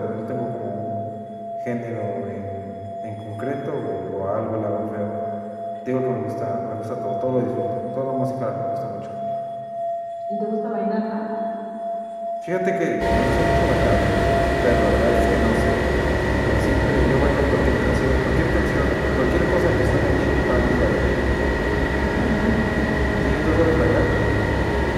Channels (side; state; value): both; identical; correlation 1.00